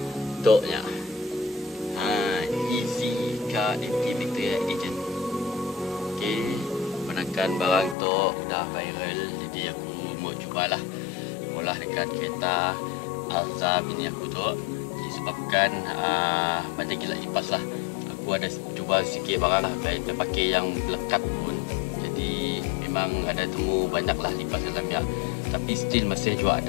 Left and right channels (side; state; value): right; drops out; at 8.0 s